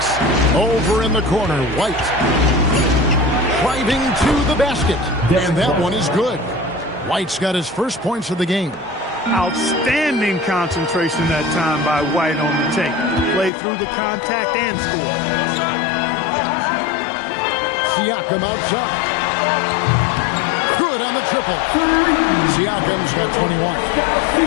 Over in the corner, White. Driving to the basket. And that one is good. White's got his first points of the game. Outstanding concentration that time by White on the tape. Played through the contact and scored. Siakam outside. Good on the triple. Siakam's got 21.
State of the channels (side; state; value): right; drops out; at 13.5 s